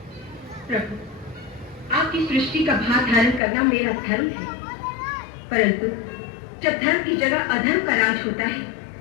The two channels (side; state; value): right; drops out; at 3.4 s